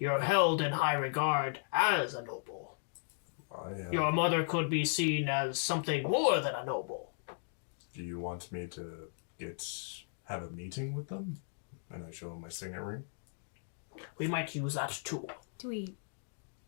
held in high regard as a noble. Your mother could be seen as something more than a noble. Do you want me to have a meeting with them? And I show them my signet ring? We might use that too.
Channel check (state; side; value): silent; right; digital silence